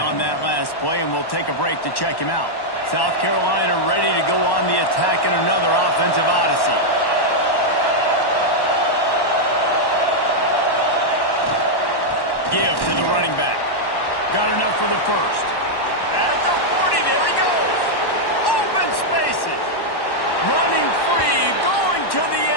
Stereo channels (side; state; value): right; late; 1.1 ms